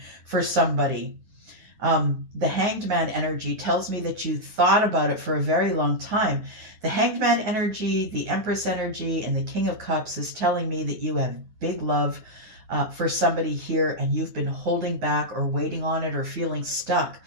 for somebody. The Hanged Man energy tells me that you thought about it for a very long time. The Hanged Man energy, the Empress energy, and the King of Cups is telling me that you have big love for somebody here and you've been holding back or waiting on it or feeling stuck.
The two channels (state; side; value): late; left; 9.3 ms